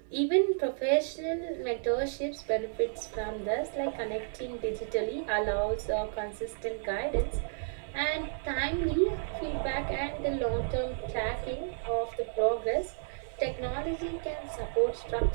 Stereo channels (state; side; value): silent; left; digital silence